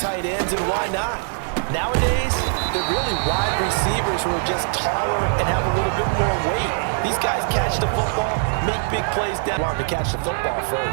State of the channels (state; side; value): silent; left; digital silence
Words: tight ends, and why not? Nowadays, they're really wide receivers who are just taller and have a little bit more weight. These guys catch the football, make big plays down. Want to catch the football